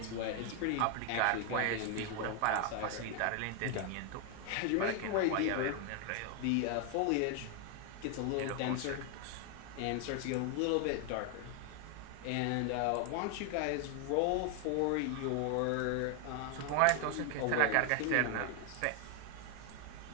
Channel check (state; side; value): different; both; correlation 0.00